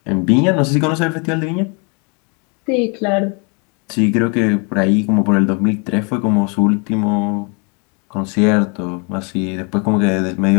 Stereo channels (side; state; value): right; quieter; 34.8 dB